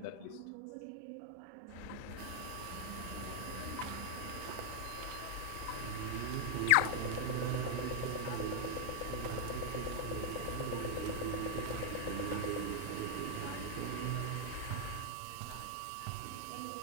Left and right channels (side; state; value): both; different; correlation 0.00